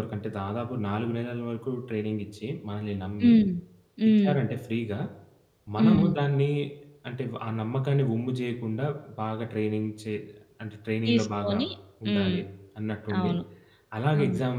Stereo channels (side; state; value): both; identical; correlation 1.00